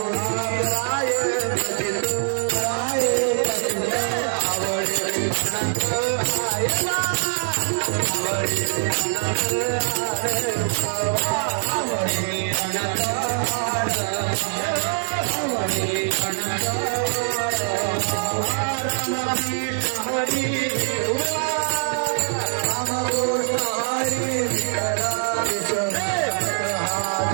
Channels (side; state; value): left; silent; digital silence